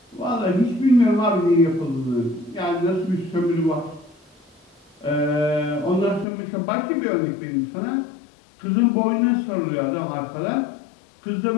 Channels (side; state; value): right; drops out; at 6.2 s